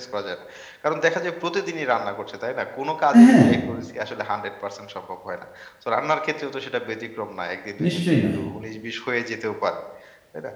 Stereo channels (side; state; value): both; identical; correlation 1.00